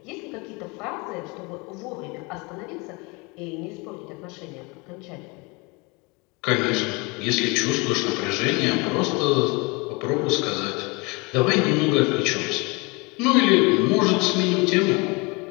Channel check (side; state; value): right; quieter; 27.7 dB